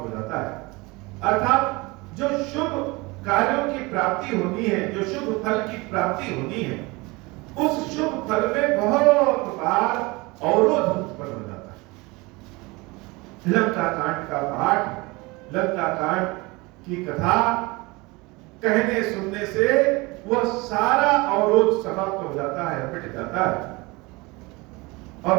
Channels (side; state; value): left; quieter; 24.3 dB